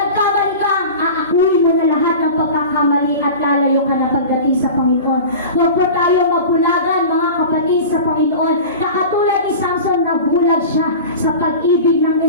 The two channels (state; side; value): inverted; both; correlation -0.34